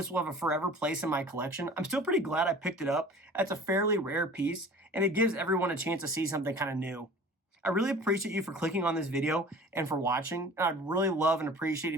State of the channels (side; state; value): both; normal; correlation 0.44